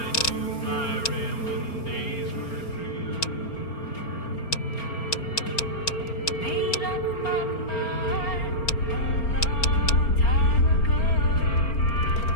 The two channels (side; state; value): right; late; 4.4 ms